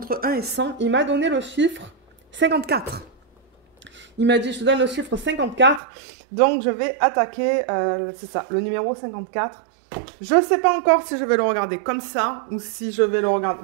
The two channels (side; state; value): left; drops out; at 5.8 s